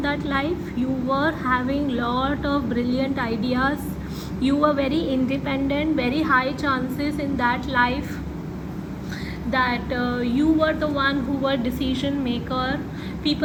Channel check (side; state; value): both; identical; correlation 1.00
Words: that life. You were having lot of brilliant ideas. You were very independent. Very high chances in that life that you were the one who were decision maker.